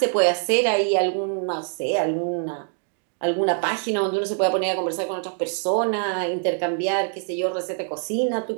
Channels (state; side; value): silent; left; 58 dB below the other